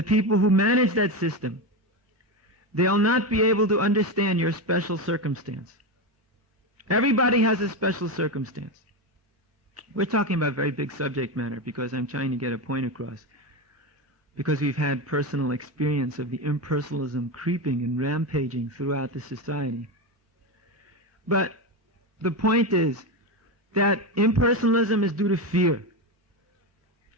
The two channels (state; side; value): normal; both; correlation 0.15